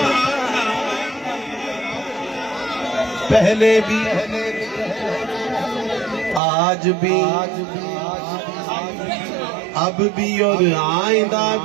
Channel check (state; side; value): drops out; left; at 6.4 s